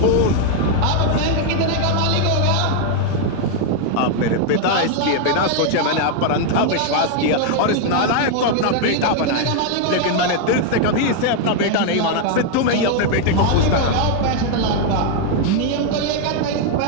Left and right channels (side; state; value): both; different; correlation 0.00